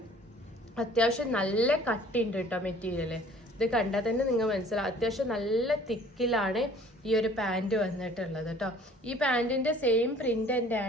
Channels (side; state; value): both; normal; correlation 0.53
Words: അത്യാവശ്യം നല്ല കട്ടിയുണ്ട് കേട്ടോ മെറ്റീരിയൽ. ഇത് കണ്ടാൽ തന്നെ നിങ്ങൾ മനസ്സിലാവും, അത്യാവശ്യം നല്ല തിക്കിലാണ് ഈ ഒരു പാൻറ്റ് വന്നിട്ടുള്ളത് കേട്ടോ. ഈ പാൻറ്റിൻ്റെ സെയിം പ്രിൻ്റ്